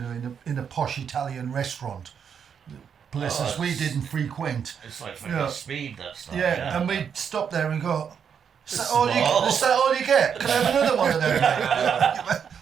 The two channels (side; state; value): left; quieter; 7.4 dB